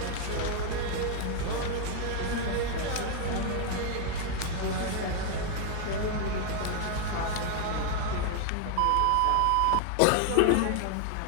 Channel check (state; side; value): different; both; correlation 0.00